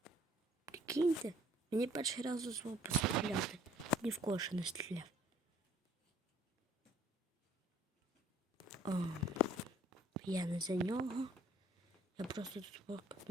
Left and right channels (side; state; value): both; normal; correlation 0.58